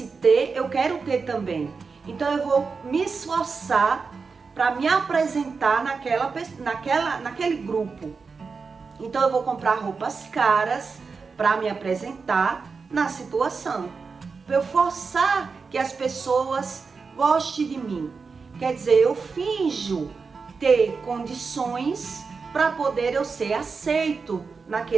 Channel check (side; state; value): left; quieter; 4.9 dB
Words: ter, eu quero ter também. Então eu vou me esforçar para me apresentar naquele grupo. Então eu vou comprar roupas caras para me apresentar na situação. Para eu forçar que as pessoas gostem de mim. Quer dizer, eu finjo ter condições para poder eu ser aceito